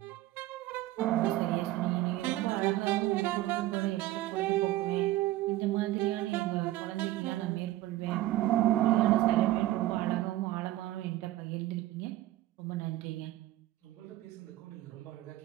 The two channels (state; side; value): quieter; left; 16.0 dB